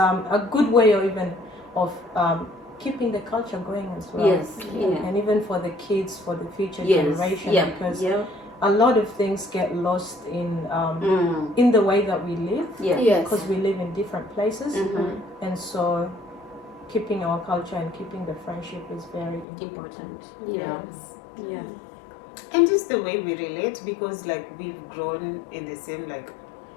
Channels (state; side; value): drops out; right; at 19.5 s